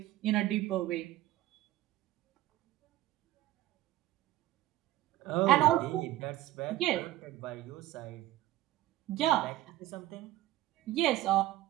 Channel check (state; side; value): quieter; left; 15.3 dB